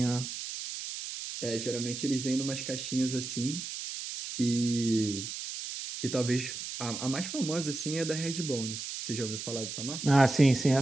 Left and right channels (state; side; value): noise; right; hiss, 7 dB below the sound